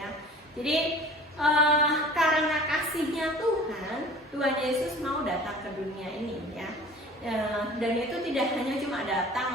Jadi karena kasihnya Tuhan Yesus mau datang ke dunia ini ya. Dan itu tidak hanya cuma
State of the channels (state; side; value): normal; both; correlation 0.44